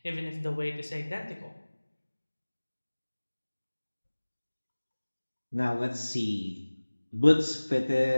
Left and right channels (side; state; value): both; inverted; correlation -1.00